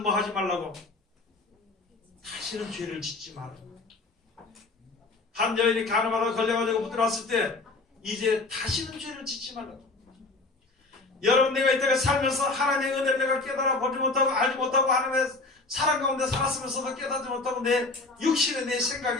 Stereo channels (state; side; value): quieter; right; 3.4 dB